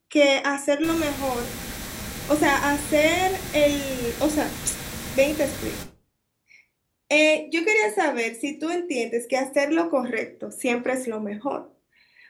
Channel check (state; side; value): identical; both; correlation 1.00